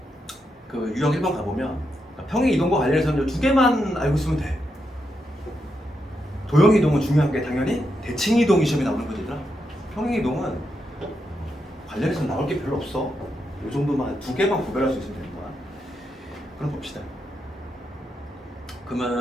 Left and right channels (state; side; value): normal; both; correlation 0.83